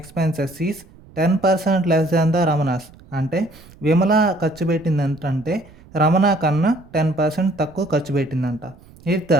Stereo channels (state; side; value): noise; right; rumble, 24 dB below the sound